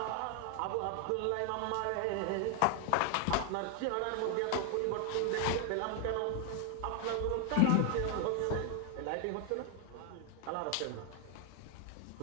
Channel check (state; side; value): different; both; correlation 0.00